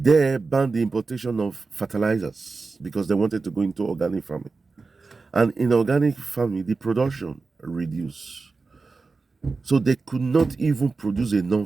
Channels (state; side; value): quieter; left; 4.1 dB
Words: banned the importation of fertilizers because they wanted to go into organic farming. And in organic farming, the production reduced. So they could not even produce